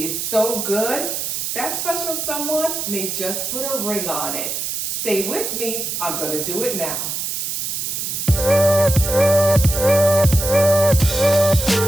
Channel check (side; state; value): right; noise; hiss, 3 dB below the sound